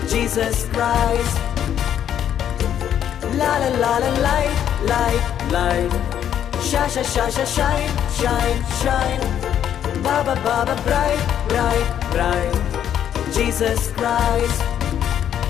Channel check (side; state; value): right; quieter; 9.8 dB